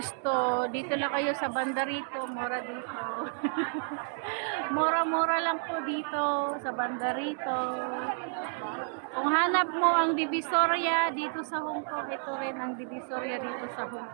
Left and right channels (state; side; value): silent; left; 56 dB below the other